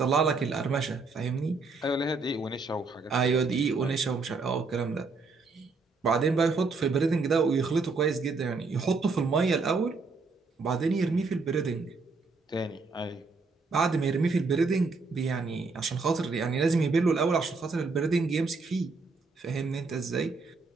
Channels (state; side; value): quieter; left; 4.1 dB